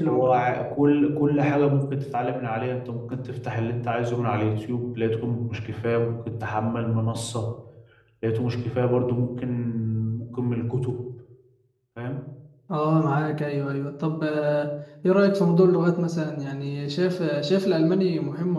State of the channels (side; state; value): both; identical; correlation 1.00